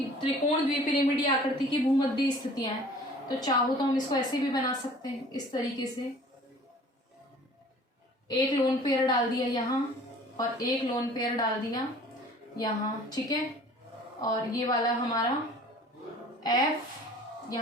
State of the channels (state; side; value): normal; both; correlation 0.49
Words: त्रिकोण द्विपिरामिडीय आकृति की भूमध्य स्थितियां हैं, तो चाहो तो हम इसको ऐसे भी बना सकते हैं, इस तरीके से। एक लोन पेयर डाल दिया यहाँ और एक लोन पेयर डाल दिया यहाँ। ठीक है, और ये वाला हमारा F,